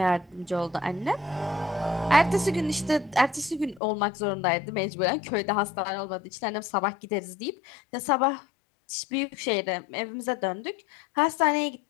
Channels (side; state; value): right; drops out; at 3.8 s